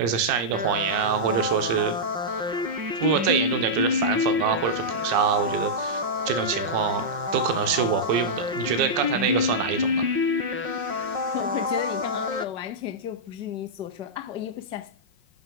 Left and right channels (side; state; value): left; late; 5.5 ms